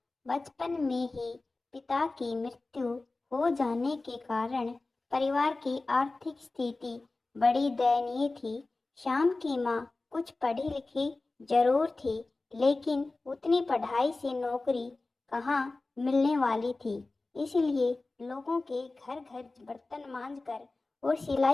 बचपन में ही पिता की मृत्यु हो जाने के कारण परिवार की आर्थिक स्थिति बड़ी दयनीय थी। श्याम की माँ कुछ पढ़ी लिखी जरूर थी, लेकिन उतनी पढ़ाई से नौकरी कहाँ मिलने वाली थी। इसलिए लोगों के घर घर बर्तन मांजकर और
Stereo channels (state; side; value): quieter; right; 3.3 dB